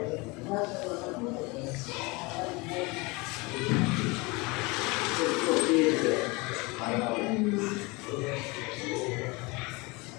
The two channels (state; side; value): quieter; right; 25.7 dB